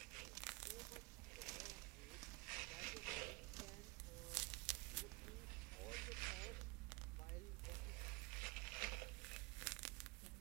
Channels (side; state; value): left; quieter; 24.8 dB